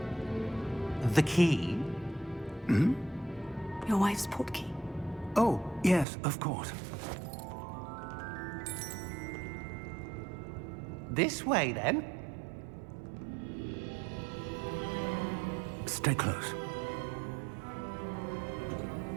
The key? Hmm? Your wife's portkey. Oh, yes, of course. This way, then. Stay close.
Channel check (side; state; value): left; drops out; at 6.1 s